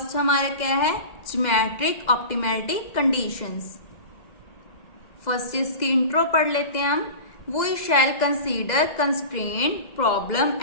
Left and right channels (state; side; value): late; right; 2.0 ms